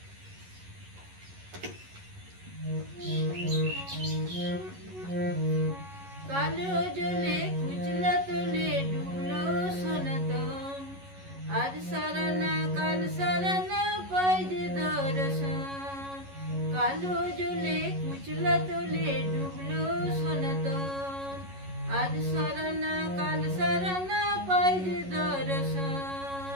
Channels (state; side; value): late; left; 11 ms